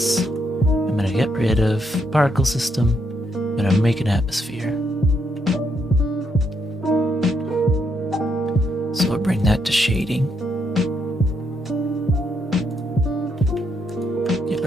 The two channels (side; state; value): both; normal; correlation 0.76